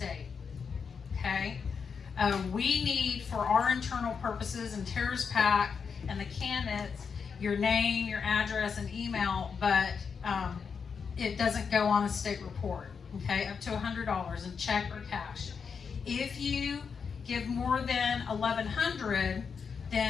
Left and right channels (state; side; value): quieter; right; 6.0 dB